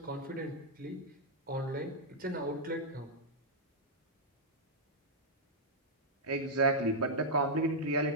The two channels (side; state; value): both; normal; correlation -0.05